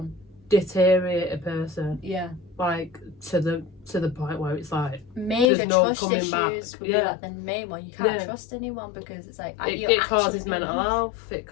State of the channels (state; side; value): drops out; right; at 5.5 s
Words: deteriorate a person. Yeah. Like to the point where it's like major no trust issues back. would be like the main one. You can't trust anyone because it's like it causes mental health. It